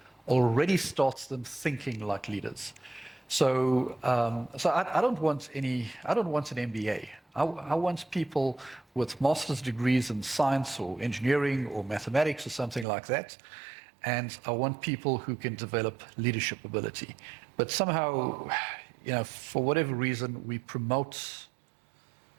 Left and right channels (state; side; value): drops out; left; at 12.9 s